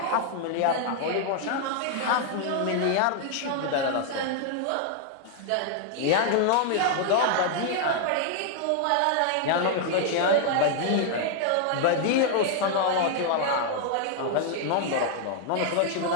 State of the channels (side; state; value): both; different; correlation 0.00